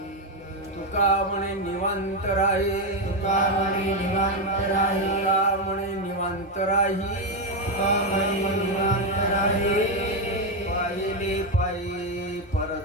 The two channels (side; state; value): both; normal; correlation 0.06